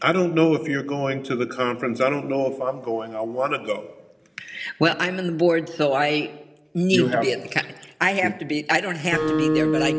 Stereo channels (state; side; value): identical; both; correlation 1.00